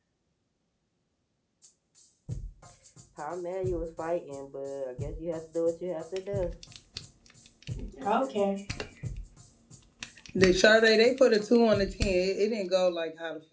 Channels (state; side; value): identical; both; correlation 1.00